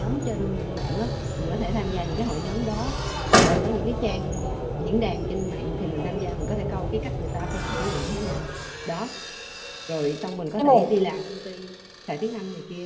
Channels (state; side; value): identical; both; correlation 1.00